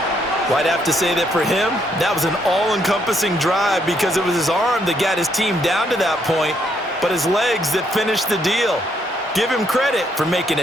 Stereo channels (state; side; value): normal; both; correlation 0.73